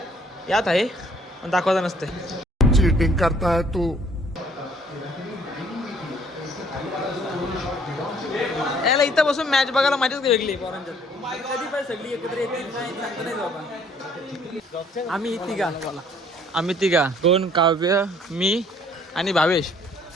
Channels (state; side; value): normal; both; correlation 0.60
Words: यात आहे पण दाखवता नसते चीटिंग करता है तू याला इथं बसून मॅच बघायला मजाच वेगळी पोरांच्यात कधी पण सगळी एकत्र येतील काय सांगता नाही बाबा आम्ही तिघा कोण काव्य मी आणि भावेश